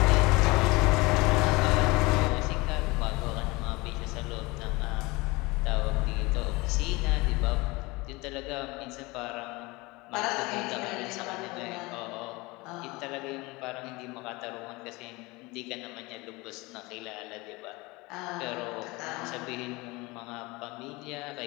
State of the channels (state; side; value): quieter; right; 23.6 dB